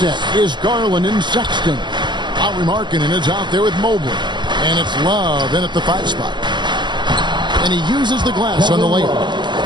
is Garland and Sexton. Lauri Markkanen is out there with Mobley. And it's Love in at the 5 spot. And he uses the glass on the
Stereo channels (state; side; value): late; left; 0.22 ms